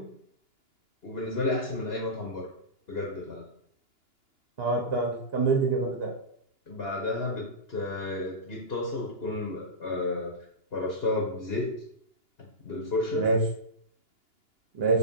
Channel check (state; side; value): late; right; 2.9 ms